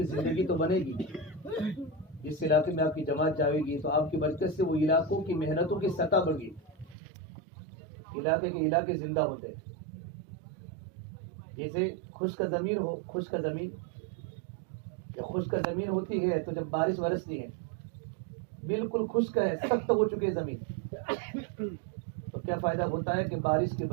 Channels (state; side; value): drops out; left; at 7.0 s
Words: زندگی تو بنے گی. جس علاقے میں آپ کی جماعت جائے گی تو آپ کی برکت سے وہ علاقوں کی محنتوں کی سطح بڑھ گئی. علاقے کے علاقے زندہ ہوتے ہیں. جیسے خشک زمین ہو، خشک زمین جب خشک زمین ہوتی ہے تو جب بارش برستی ہے بالکل خشک ہے، سخت ہو چکی ہے زمین، تو کیا فائدہ ہوتا ہے کہ بارش کی